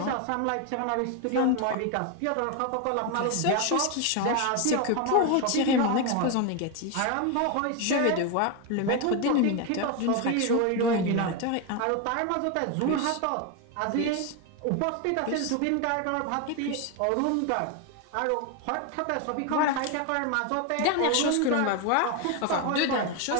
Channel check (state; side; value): different; both; correlation 0.01